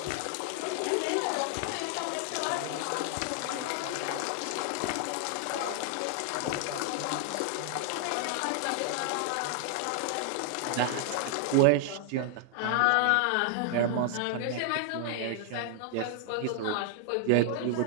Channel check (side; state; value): both; different; correlation 0.00